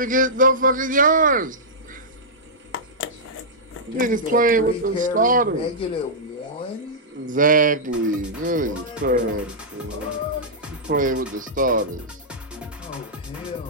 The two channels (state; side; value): normal; both; correlation -0.12